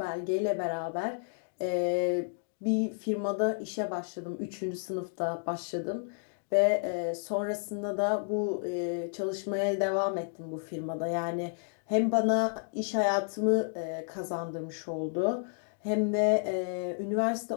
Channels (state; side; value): silent; right; digital silence